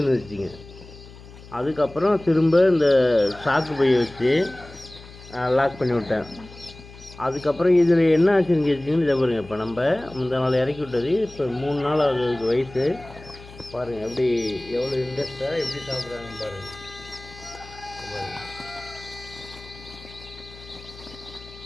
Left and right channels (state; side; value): noise; left; hum, 18 dB below the sound